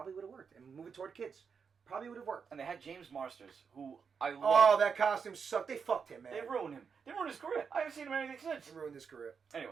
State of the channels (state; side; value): quieter; left; 6.1 dB